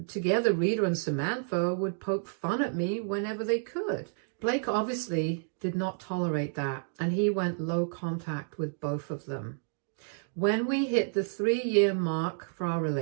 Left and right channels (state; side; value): silent; left; digital silence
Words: together Rita and Samantha would poke fun at me whenever they could. Blake obviously did not tolerate that, and he went low contact with both of them. When we hit the 3-year mark for our